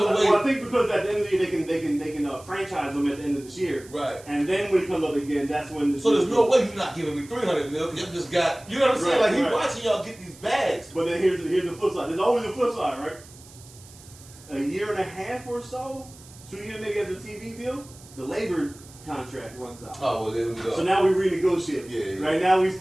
way. well, I think because at the end of the year they can franchise him at the end of this year. Right. And then when he comes up again, that's when the So there's no way you're not giving me $300 million because you just got. You know what I'm saying? Right, Like he right. watching y'all get these bags. But then here's the flip side. There's always a flip side, right? A year and a half or so, 2 years maybe after the TV deal, the labor contract runs out. Oh well, there we go. So now we renegotiate. Yeah. Right now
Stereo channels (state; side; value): noise; right; hiss, 21 dB below the sound